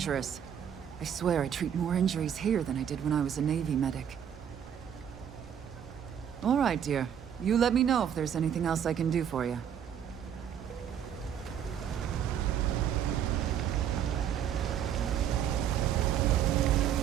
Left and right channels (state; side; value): quieter; left; 9.1 dB